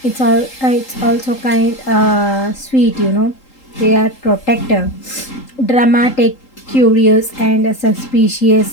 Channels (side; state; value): right; late; 3.8 ms